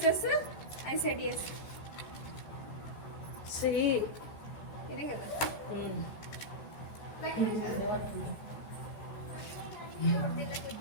ICET S. Sri ఇదే కదా.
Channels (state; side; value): late; right; 14 ms